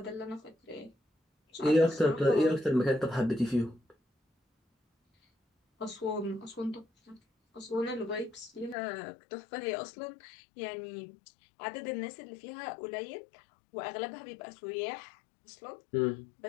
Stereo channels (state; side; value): drops out; right; at 8.8 s